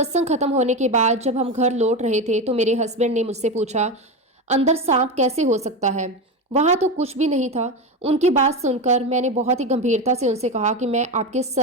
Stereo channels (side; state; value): both; normal; correlation 0.18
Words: खत्म होने के बाद जब हम घर लौट रहे थे तो मेरे हस्बैंड ने मुझसे पूछा, अंदर सांप कैसे हो सकता है? वहां तो कुछ भी नहीं था। उनकी बात सुनकर मैंने बहुत ही गंभीरता से उनसे कहा कि मैं आपके